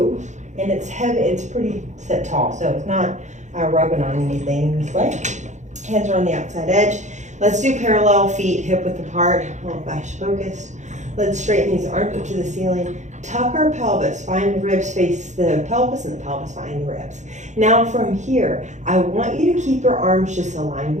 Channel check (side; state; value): left; late; 0.34 ms